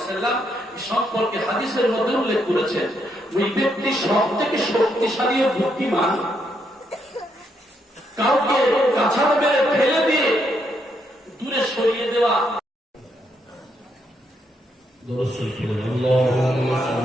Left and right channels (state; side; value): normal; both; correlation 0.77